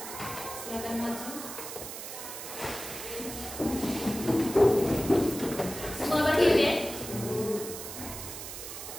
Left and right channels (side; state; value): right; noise; hiss, 9 dB below the sound